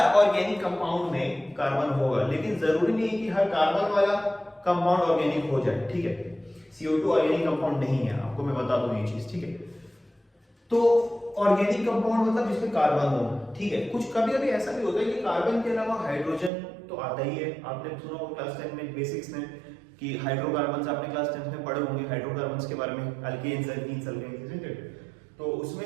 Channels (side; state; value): left; drops out; at 16.5 s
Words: ऑर्गेनिक कंपाउंड में कार्बन होगा, लेकिन जरूरी नहीं है कि हर कार्बन वाला कंपाउंड ऑर्गेनिक हो जाए, ठीक है। CO2 ऑर्गेनिक कंपाउंड नहीं है, आपको मैं बता दूं ये चीज, ठीक है। तो ऑर्गेनिक कंपाउंड मतलब जिसमें कार्बन हो, ठीक है। कुछ कभी कभी ऐसा भी होता है कि कार्बन के अलावा हाइड्रोजन तो आता ही है, आपने सुना होगा क्लास 10 में बेसिक्स में कि हाइड्रोकार्बन्स, आपने क्लास 10 में पढ़े होंगे हाइड्रोकार्बन्स के बारे में, अल्केन्स, एल्कीन्स, एल्केन्स, तो